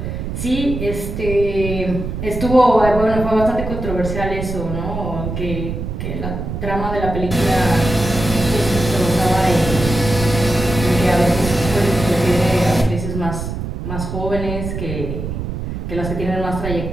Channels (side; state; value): right; noise; rumble, 5 dB below the sound